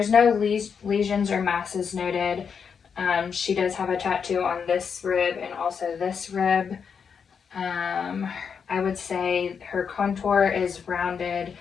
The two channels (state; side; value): quieter; right; 6.5 dB